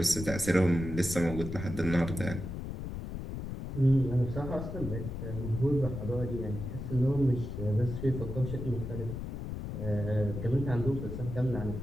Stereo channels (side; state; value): left; noise; rumble, 6 dB below the sound